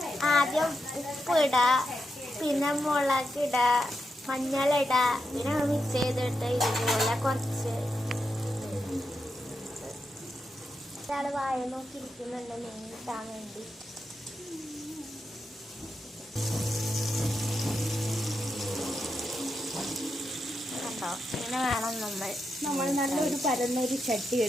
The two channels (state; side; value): normal; both; correlation 0.86